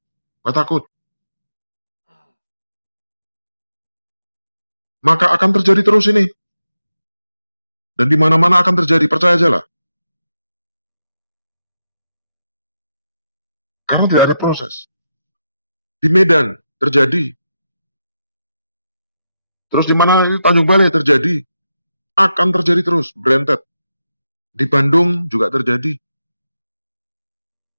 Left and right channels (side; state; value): both; inverted; correlation -0.87